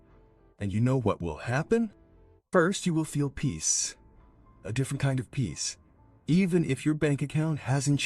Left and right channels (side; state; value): both; identical; correlation 1.00